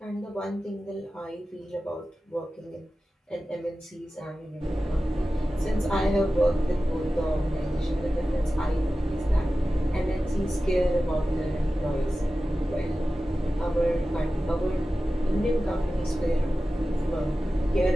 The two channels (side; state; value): both; normal; correlation 0.95